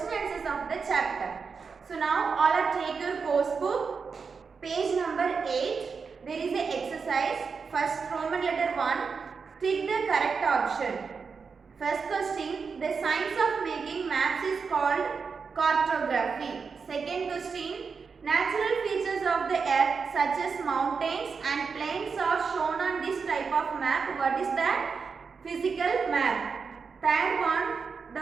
answers of the chapter. So now all are take your course book, page number 8. There is a exercise. First Roman letter 1. Tick the correct option. First question, the science of making maps is called cartography. Second question, natural features of the earth such as mountains and plains are shown on this type of map. What is that? Physical map. Third one,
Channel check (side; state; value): left; quieter; 5.4 dB